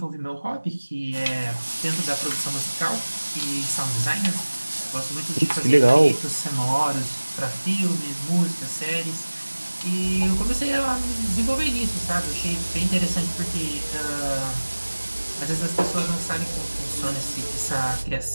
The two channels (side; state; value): both; inverted; correlation -1.00